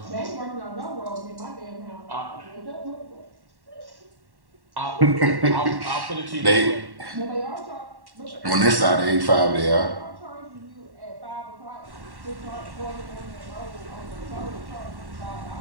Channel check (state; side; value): late; left; 1.1 ms